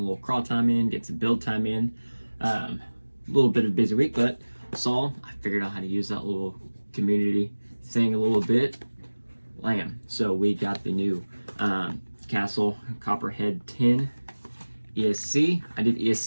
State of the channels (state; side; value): inverted; both; correlation -1.00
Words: crawl time in, get some build time in. A little bit of a busy week, but I figured out how to use that little community thing a little bit. So we got the new Castle Copperhead 10 ESC. I did